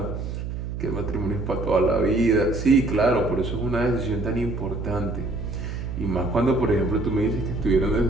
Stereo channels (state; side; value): noise; right; hum, 5 dB below the sound